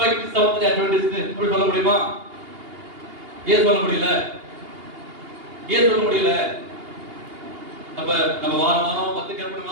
செவன்த் அட்வென்டிஸ்ட் அப்படி சொல்ல முடியுமா? ஏன் சொல்ல முடியல? ஏன் சொல்ல முடியல? அப்ப நம்ம வாரம் 10 கற்பனை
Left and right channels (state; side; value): late; left; 2.8 ms